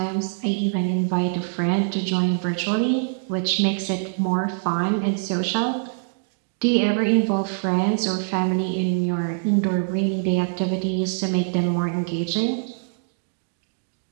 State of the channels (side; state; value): left; silent; digital silence